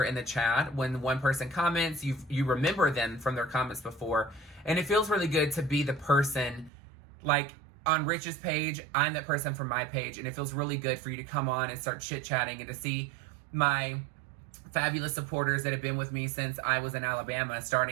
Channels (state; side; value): drops out; left; at 6.7 s